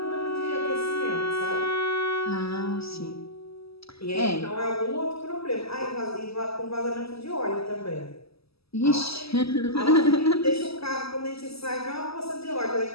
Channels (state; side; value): late; right; 0.77 ms